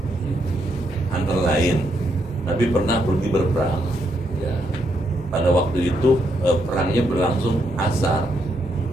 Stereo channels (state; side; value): normal; both; correlation 0.77